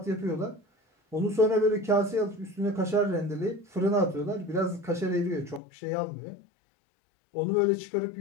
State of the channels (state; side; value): drops out; right; at 5.6 s